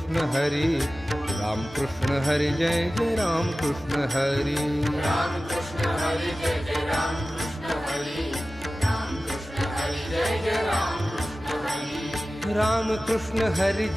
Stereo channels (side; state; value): both; normal; correlation 0.96